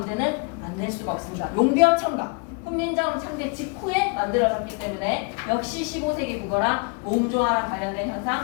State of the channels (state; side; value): quieter; right; 37.3 dB